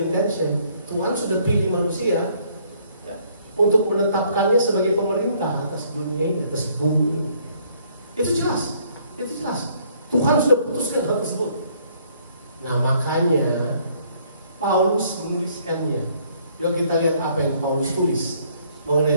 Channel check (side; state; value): both; inverted; correlation -0.65